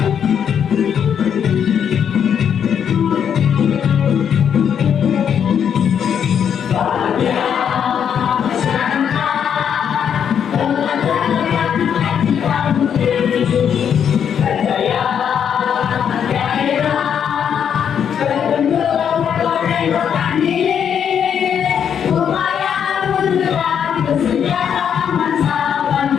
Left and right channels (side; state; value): right; quieter; 8.2 dB